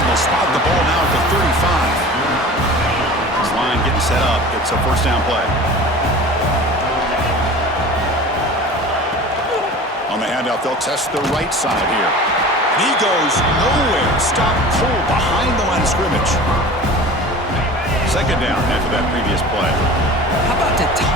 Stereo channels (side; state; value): both; normal; correlation 0.39